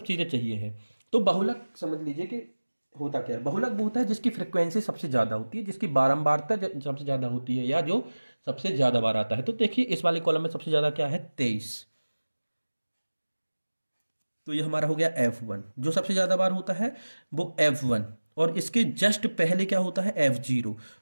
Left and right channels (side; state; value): both; inverted; correlation -1.00